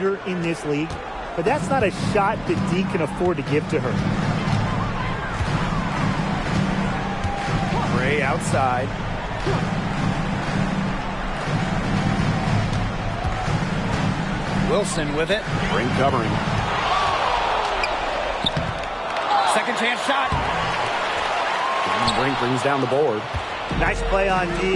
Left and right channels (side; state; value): both; identical; correlation 1.00